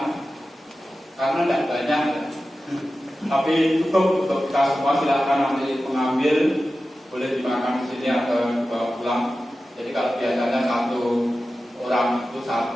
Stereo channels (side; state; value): both; normal; correlation 0.94